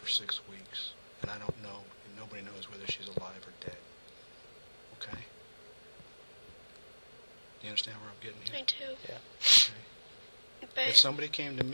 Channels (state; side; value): inverted; both; correlation -1.00